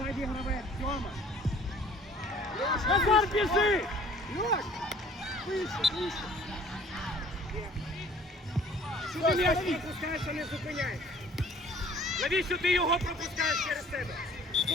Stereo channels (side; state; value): both; normal; correlation 0.53